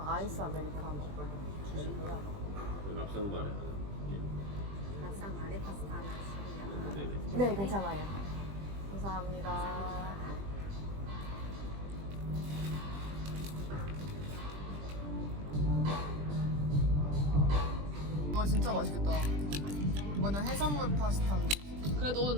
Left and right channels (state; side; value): late; left; 20 ms